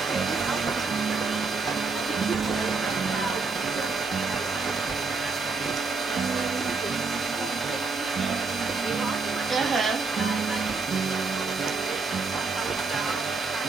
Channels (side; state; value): left; quieter; 4.4 dB